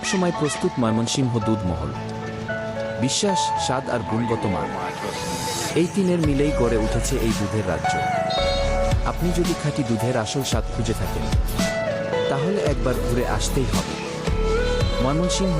প্রস্তুত ময়মনসিংহ দুধ মহল। বিশ্বাস, স্বাদ আর গুণগত মান, এই তিনের মিলেই গড়ে উঠেছে এই দুধের রাজ্য। আপনি যদি খাঁটি দুধের আসল স্বাদ খুঁজে থাকেন, তাহলে একবার ঘুরে আসতেই হবে ময়মনসিংহ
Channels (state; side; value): identical; both; correlation 1.00